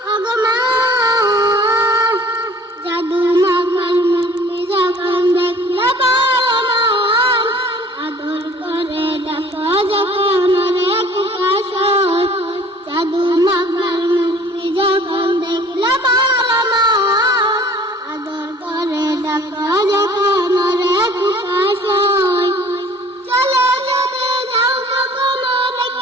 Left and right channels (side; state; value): both; normal; correlation 0.50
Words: ওগো মা। জাদু মাখার মূর্তি যখন দেখলে আদর করে ডাকা যখন প্রকাশ হয়। জাদু মাখার মূর্তি যখন দেখলে